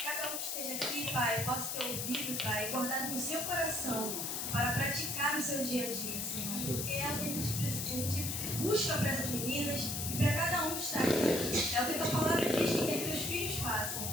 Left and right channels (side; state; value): left; noise; hiss, 2 dB below the sound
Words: Cada um que esteja aqui, Pai, possa ter ouvido, Pai, guardado no seu coração para praticar no seu dia a dia, Senhor. Porque é o que a gente busca para essas meninas e para cada um que está aqui. É o que a tua palavra diz que quer que teus filhos façam.